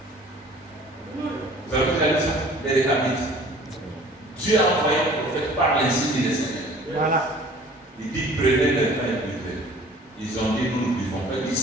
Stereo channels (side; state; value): both; normal; correlation 0.49